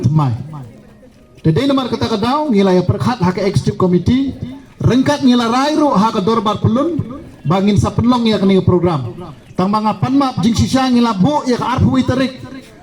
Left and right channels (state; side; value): identical; both; correlation 1.00